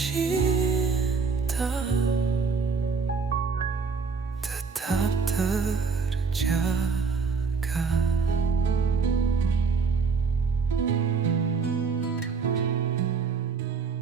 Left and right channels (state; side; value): quieter; left; 5.1 dB